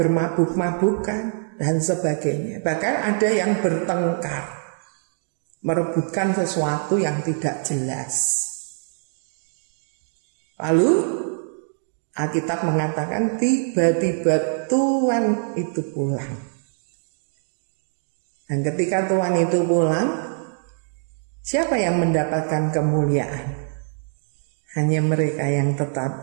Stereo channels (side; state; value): left; silent; 63 dB below the other